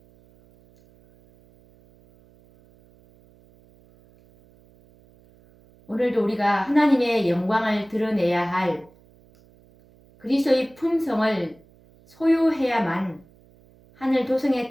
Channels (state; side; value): noise; right; hum, 29 dB below the sound